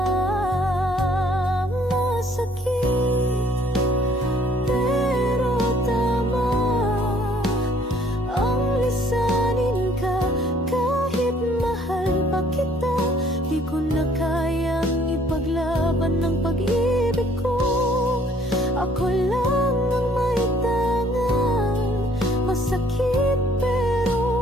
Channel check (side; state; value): both; normal; correlation 0.61